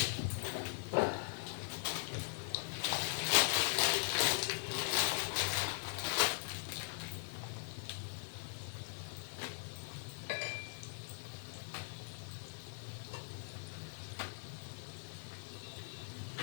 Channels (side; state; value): right; silent; digital silence